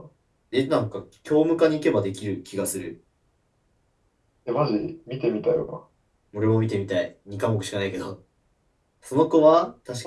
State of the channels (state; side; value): identical; both; correlation 1.00